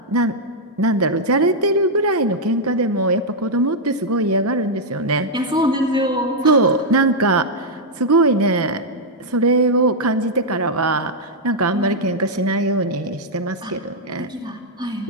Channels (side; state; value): both; normal; correlation -0.04